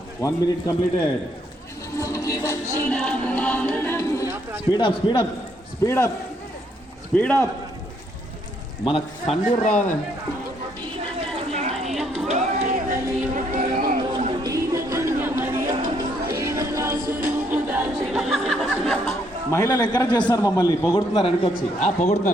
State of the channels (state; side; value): normal; both; correlation 0.71